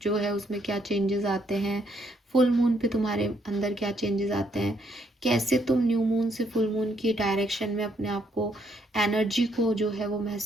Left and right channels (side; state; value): both; normal; correlation 0.72